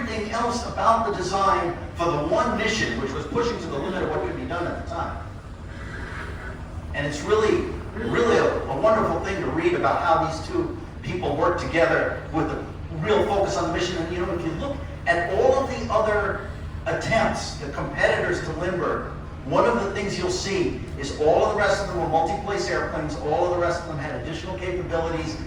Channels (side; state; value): both; identical; correlation 1.00